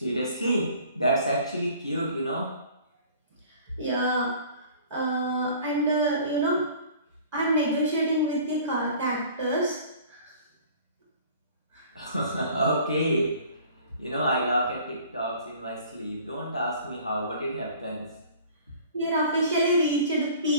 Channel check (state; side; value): inverted; both; correlation -0.49